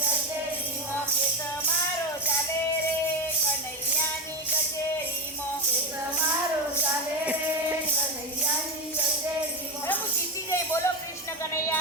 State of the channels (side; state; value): both; normal; correlation 0.15